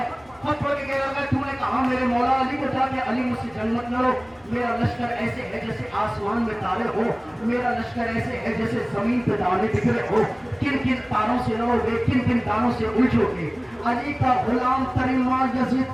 खत पढ़ के कह रहा है तूने कहा मेरे मौला अली को जाके अली मुझसे जंग मत लड़ो, मेरा लश्कर ऐसे है जैसे आसमान में तारे हो, मेरा लश्कर ऐसे है जैसे जमीन पे दाने बिखरे हो, किन किन तारों से लड़ोगे, किन किन तारों से उलझोगे। अली का गुलाम करीमा यजीद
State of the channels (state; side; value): noise; left; hum, 30 dB below the sound